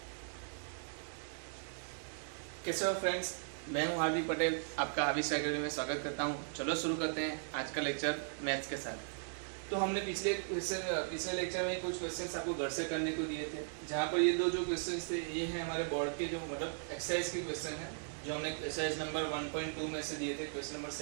हो फ्रेंड्स, मैं हूं हार्दिक पटेल, आपका हाविस अकेडमी में स्वागत करता हूं। चलो शुरू करते हैं आज का लेक्चर मैथ्स के साथ। तो हमने पिछले लेक्चर में कुछ क्वेश्चंस आपको घर से करने को दिए थे, जहां पर ये दो जो क्वेश्चंस थे ये हैं हमारे बोर्ड के, जो मतलब एक्सरसाइज के क्वेश्चन है, जो हमने एक्सरसाइज नंबर 1.2 में से दिए थे। क्वेश्चन नंबर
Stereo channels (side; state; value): left; silent; digital silence